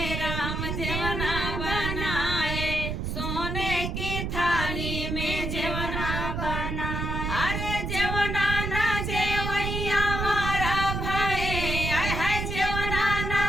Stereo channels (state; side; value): noise; right; rumble, 2 dB below the sound